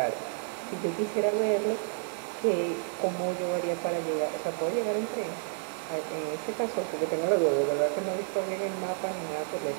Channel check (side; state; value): left; silent; 58 dB below the other